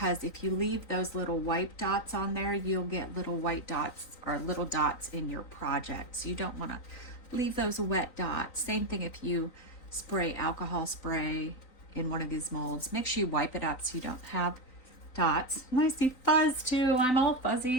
if you leave those little white dots on there, you'll get little white dots or little dots in your project. So you don't want to leave those wet dots. Same thing if you spray alcohol spray in one of these molds. Make sure you wipe it up so you don't have dots. And I see fuzz too. I'm all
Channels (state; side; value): late; right; 3.9 ms